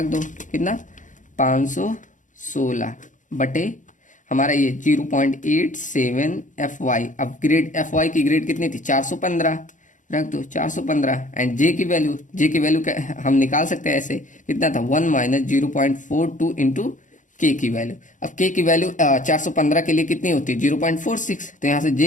दो, कितना 516 बटे हमारा ये 0.87 Fy। अब ग्रेड Fy की ग्रेड कितनी थी 415, रख दो 415, एंड जे की वैल्यू हम निकाल सकते हैं ऐसे, कितना था 1 माइनस 0.42 इंटू के की वैल्यू। अब के की वैल्यू 415 के लिए कितनी होती है 0.46, तो यहाँ से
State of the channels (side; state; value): right; late; 0.37 ms